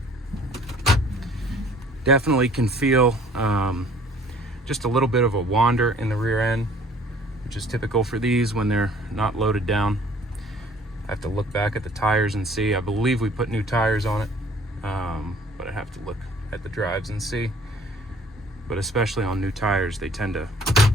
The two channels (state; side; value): normal; both; correlation 0.54